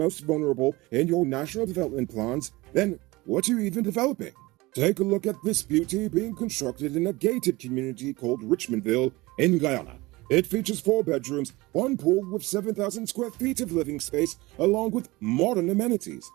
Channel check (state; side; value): quieter; left; 21.4 dB